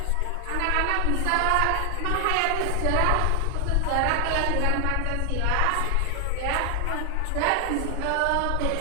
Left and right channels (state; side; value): different; both; correlation 0.00